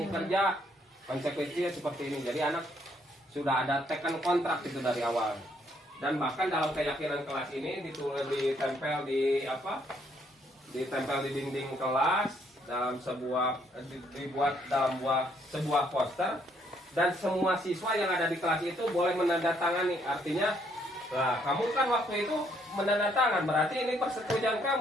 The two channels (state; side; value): normal; both; correlation 0.69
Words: kerja, konsekuensinya seperti ini. Jadi anak sudah ada tekan kontrak itu dari awal. Dan bahkan dalam keyakinan kelas ini ditempel di dinding kelas, dalam dibuat dalam sebuah poster, dan semua siswa yang ada di kelas itu boleh menandatangani. Artinya, lah kamu kan waktu itu menandatangan, berarti ini persetujuan